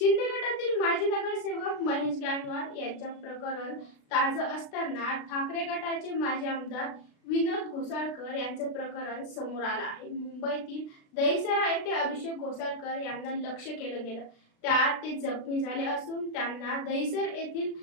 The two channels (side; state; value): right; late; 36 ms